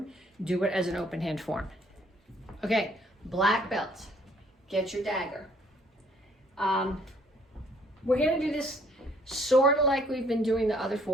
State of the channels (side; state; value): both; normal; correlation 0.62